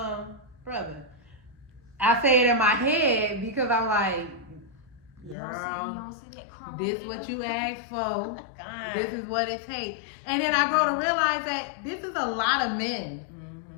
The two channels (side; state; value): right; drops out; at 5.4 s